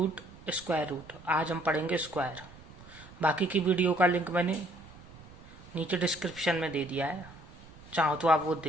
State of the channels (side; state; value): right; noise; rumble, 20 dB below the sound